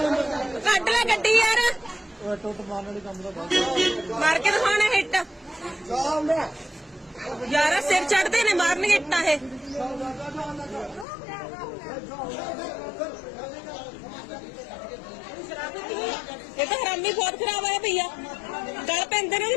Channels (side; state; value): right; drops out; at 11.1 s